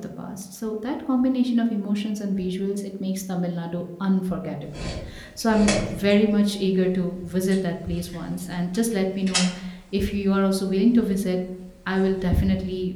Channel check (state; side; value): identical; both; correlation 1.00